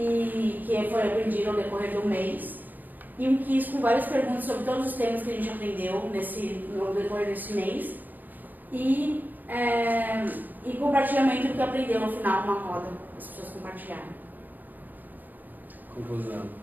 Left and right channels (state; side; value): late; left; 0.085 ms